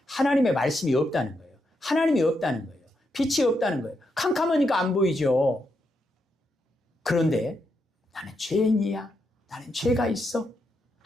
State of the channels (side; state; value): both; normal; correlation 0.82